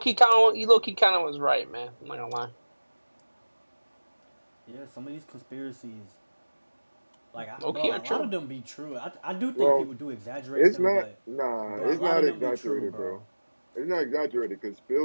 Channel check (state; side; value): inverted; both; correlation -1.00